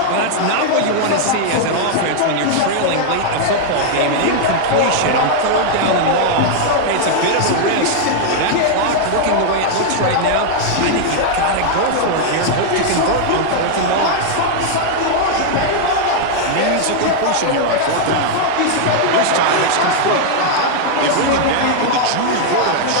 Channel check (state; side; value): different; both; correlation 0.00